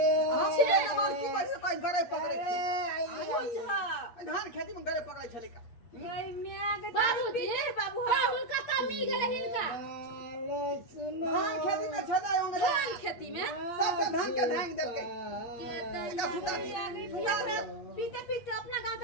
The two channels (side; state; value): right; late; 8.6 ms